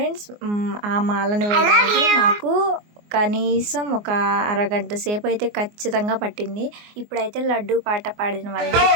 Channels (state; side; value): late; left; 24 ms